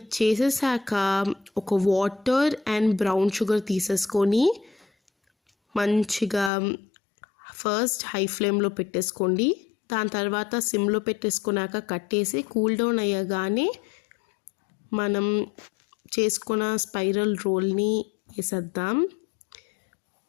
చేసేసాక ఒక వాటర్ అండ్ బ్రౌన్ షుగర్ తీసేసుకొని మంచిగా ఫస్ట్ హై ఫ్లేమ్లో పెట్టేసుకోండి. దాని తర్వాత సిమ్లో పెట్టేసుకున్నాక కట్టేసి కూల్ డౌన్ అయ్యగానే మనం చేసుకున్న స్పైరల్ రోల్ని వేసేద్దాం.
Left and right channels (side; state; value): right; drops out; at 6.5 s